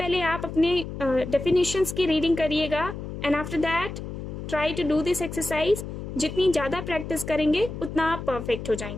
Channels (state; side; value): noise; left; hum, 8 dB below the sound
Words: आप अपने डेफिनेशंस की रीडिंग करिएगा and after that try to do this exercise. जितनी ज़्यादा प्रैक्टिस करेंगे उतना आप परफेक्ट हो